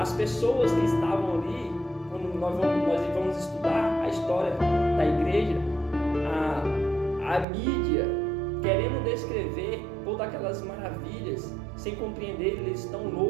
pessoas que estavam ali, quando nós vamos estudar a história da igreja, a mídia querendo descrever todas aquelas maravilhas, sem compreender, eles estão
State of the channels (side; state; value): left; drops out; at 7.5 s